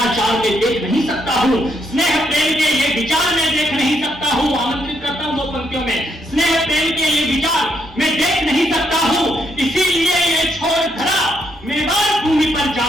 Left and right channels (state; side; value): normal; both; correlation 0.75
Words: में देख नहीं सकता हूँ, स्नेह प्रेम के ये विचार में देख नहीं सकता हूँ। आमंत्रित करता हूँ 2 पंक्तियों में, स्नेह प्रेम के ये विचार मैं देख नहीं सकता हूँ, इसीलिए ये छोड़ धरा मेवाड़ भूमि पर